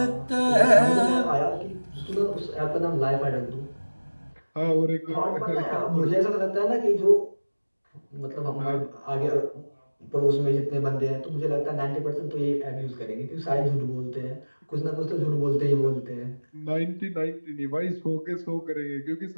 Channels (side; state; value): both; inverted; correlation -1.00